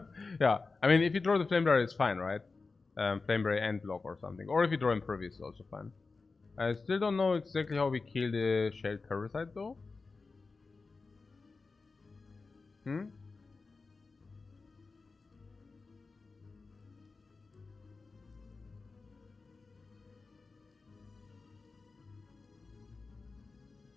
Yeah, I mean, if you draw the Flamebearer, it's fine, right? Flamebearer and block or something. Or if you draw Impervious, it's also fine. I still don't know exactly how we kill the Shelled Parasite, though.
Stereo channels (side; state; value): right; quieter; 4.1 dB